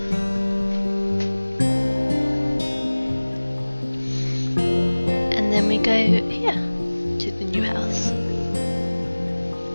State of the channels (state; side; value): inverted; both; correlation -1.00